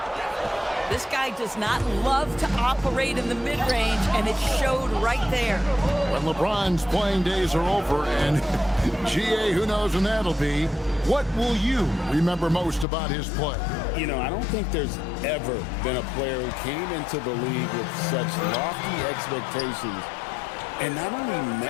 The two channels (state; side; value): drops out; right; at 12.9 s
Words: This guy does not love to operate in the mid-range, and it showed right there. When LeBron's playing days are over, and GA, who knows when that'll be, what will you remember most about his play? You know, I don't think there's ever been a player who came into the league with such lofty expectations and not only